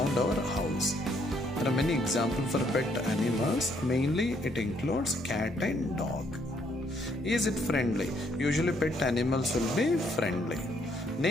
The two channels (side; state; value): both; normal; correlation 0.70